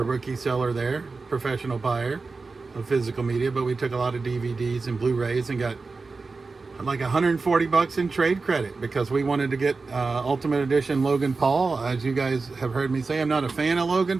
a rookie seller there, professional buyer of physical media, but we took a lot of DVDs and Blu-rays and got like $140 in trade credit because we wanted to get Ultimate Edition Logan Paul. As you guys have heard me say, I'm not a fan of Logan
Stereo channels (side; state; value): left; quieter; 4.1 dB